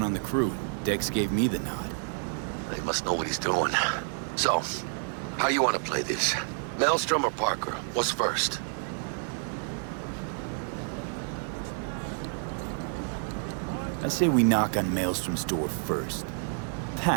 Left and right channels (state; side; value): silent; left; 58 dB below the other